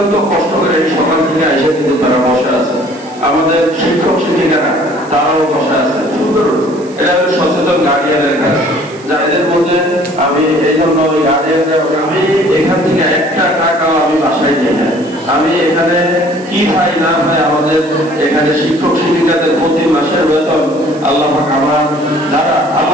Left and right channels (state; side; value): noise; right; hiss, 24 dB below the sound